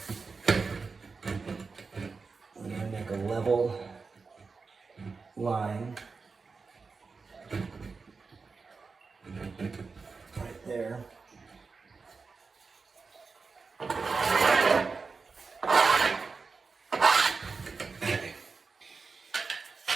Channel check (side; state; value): left; quieter; 4.6 dB